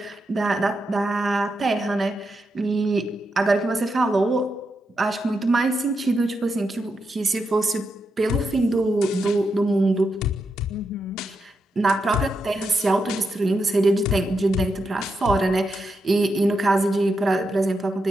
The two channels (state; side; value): normal; both; correlation 0.85